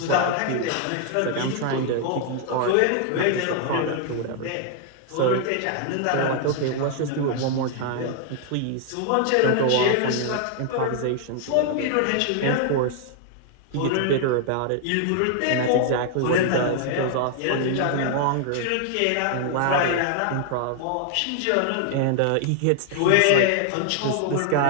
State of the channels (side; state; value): both; different; correlation 0.00